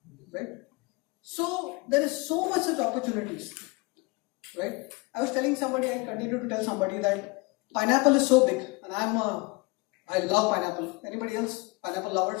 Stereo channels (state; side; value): quieter; right; 26.5 dB